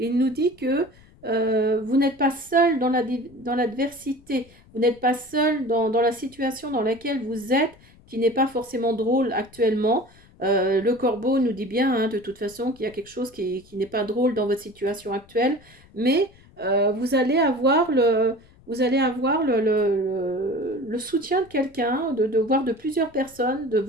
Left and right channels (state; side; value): noise; left; rumble, 26 dB below the sound